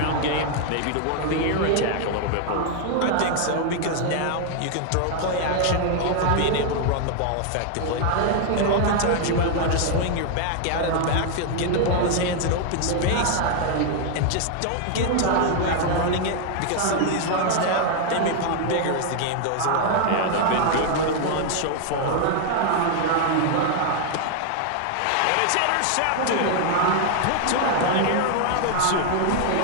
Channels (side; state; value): both; different; correlation 0.00